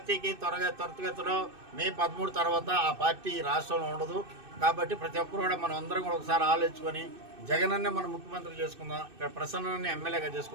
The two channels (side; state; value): left; late; 2.6 ms